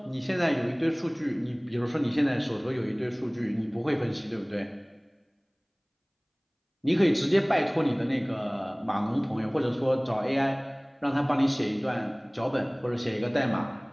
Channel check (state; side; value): identical; both; correlation 1.00